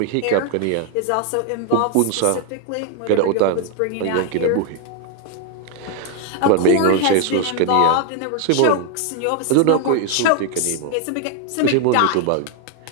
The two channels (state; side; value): different; both; correlation 0.00